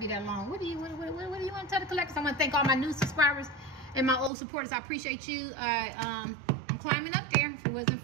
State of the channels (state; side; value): drops out; left; at 4.3 s